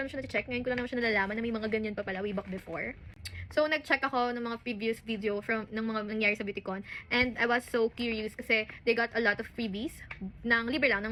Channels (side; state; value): both; identical; correlation 1.00